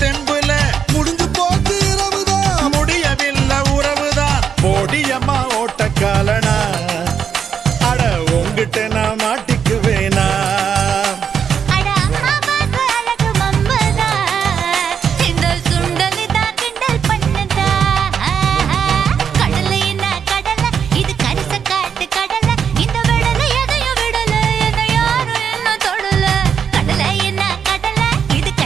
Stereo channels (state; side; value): quieter; left; 7.4 dB